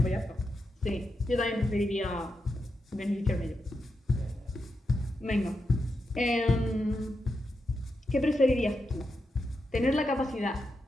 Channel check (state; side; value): normal; both; correlation 0.86